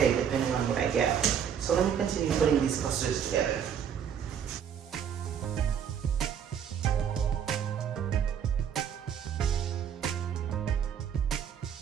depending on what I get. So let me continue putting these clusters together.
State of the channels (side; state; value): left; quieter; 8.2 dB